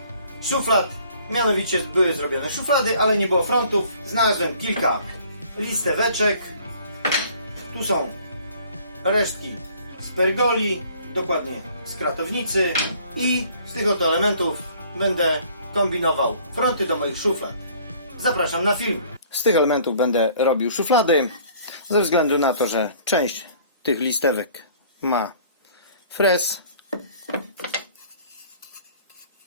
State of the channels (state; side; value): inverted; both; correlation -0.55